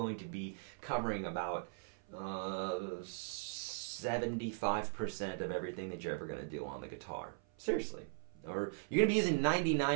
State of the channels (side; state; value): left; silent; 52 dB below the other